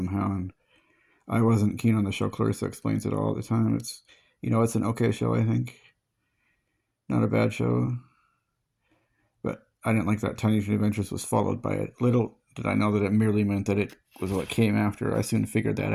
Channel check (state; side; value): identical; both; correlation 1.00